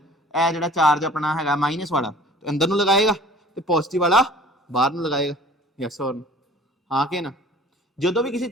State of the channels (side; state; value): both; normal; correlation 0.48